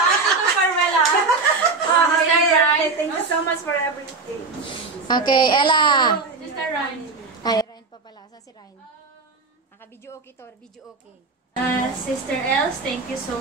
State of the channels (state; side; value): quieter; left; 4.0 dB